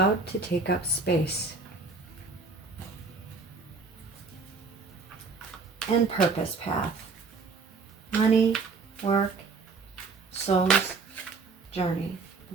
to take up space. And purpose path. Money, work, soul's journey.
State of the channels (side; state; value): left; quieter; 4.4 dB